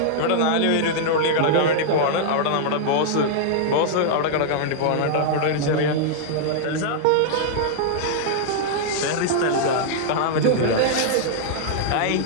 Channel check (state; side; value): different; both; correlation -0.01